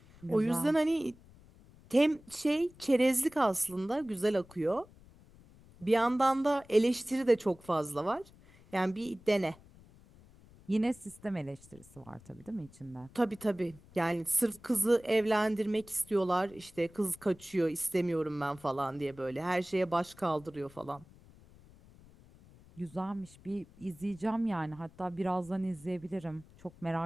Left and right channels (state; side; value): noise; left; rumble, 24 dB below the sound